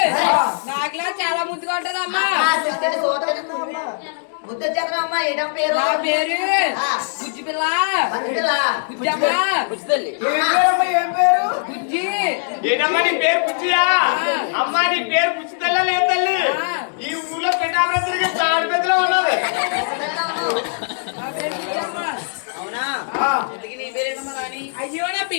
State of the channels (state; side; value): silent; right; digital silence